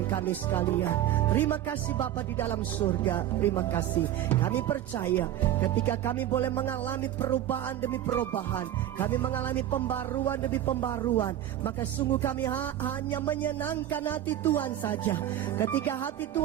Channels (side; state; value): left; quieter; 12.1 dB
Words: kami sekalian. Terima kasih Bapa di dalam surga. Terima kasih. Kami percaya ketika kami boleh mengalami perubahan demi perubahan, kami mengalami pembaruan demi pembaruan, maka sungguh kami hanya menyenangkan hati Tuhan saja. Ketika hati